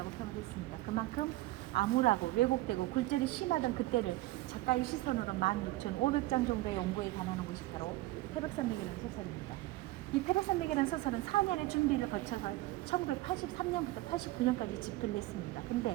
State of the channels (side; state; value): left; quieter; 18.1 dB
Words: 표현했습니다. 그만큼 암울하고 왜곡되고 굴절이 심하던 그때를 작가의 시선으로 16,500장 정도의 연구에 관하는 것이 바로 태백산맥이라는 소설입니다. 이 태백산맥이라는 소설은 4년의 준비를 거쳐서 1983년부터 89년까지 집필을 했습니다.